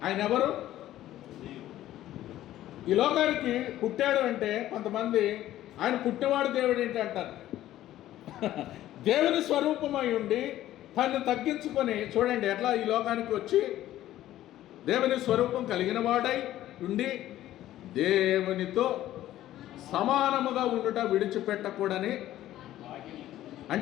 ఆయన ఎవరు? ఈ లోకానికి పుట్టాడు అంటే కొంతమంది ఆయన పుట్టినవాడు దేవుడు ఏంటి అంటారు. దేవుని స్వరూపమై ఉండి తను తగ్గించుకొని, చూడండి ఎట్లా ఈ లోకానికి వచ్చి దేవుని స్వరూపం కలిగిన వాడై ఉండి దేవునితో సమానముగా ఉండుట విడిచిపెట్టకూడని.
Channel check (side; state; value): right; quieter; 13.7 dB